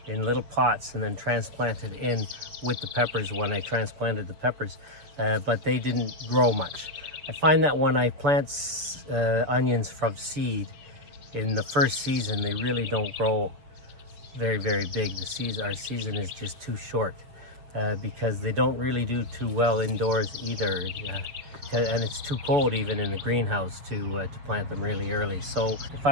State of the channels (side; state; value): left; late; 6.9 ms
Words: in little pots and then transplanted in with the peppers when I transplanted the peppers, but they didn't grow much. I find that when I plant onions from seed in the first season, they really don't grow very, very big. Our season is just too short because they don't really do too well indoors either. And it's too cold even in the greenhouse to plant them really early. So if